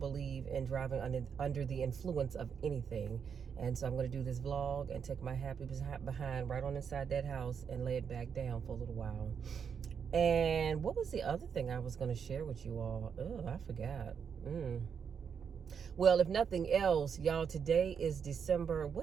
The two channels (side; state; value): left; quieter; 6.9 dB